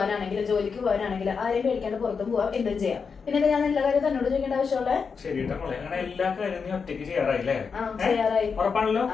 ജോലിക്ക് പോകാനാണെങ്കിലും ആരെയും പേടിക്കാണ്ട് പുറത്തും പോവാം, എന്തും ചെയ്യാം. പിന്നെ ഞാൻ എല്ലാ കാര്യം തന്നോട് ചോദിക്കേണ്ട ആവശ്യമുള്ളേ. ശരിട്ടാ മോളെ, അങ്ങനെ എല്ലാ കാര്യവും നീ ഒറ്റയ്ക്ക് ചെയ്യാറായില്ലേ? ചെയ്യാറായി. ഉറപ്പാണല്ലോ?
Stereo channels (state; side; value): quieter; right; 5.6 dB